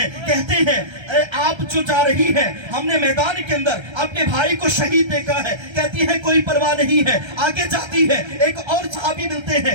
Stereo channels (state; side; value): late; left; 1.3 ms